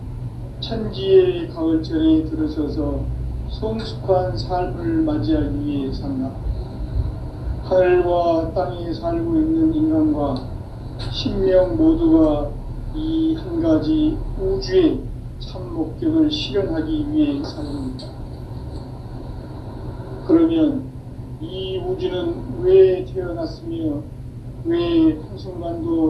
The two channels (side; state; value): both; identical; correlation 1.00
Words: 천지의 가을철에 들어서서 성숙한 삶을 맞이하기 위해 산다. 하늘과 땅에 살고 있는 인간과 신명 모두가 이 한 가지 우주의 참 목적을 실현하기 위해 살립니다. 그러면 이 우주는 왜 태어났으며 왜